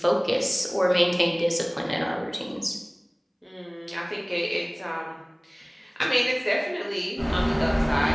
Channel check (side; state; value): both; identical; correlation 1.00